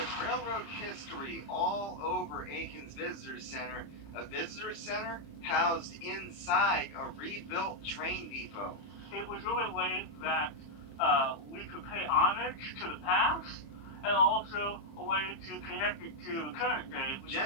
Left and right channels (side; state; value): right; late; 30 ms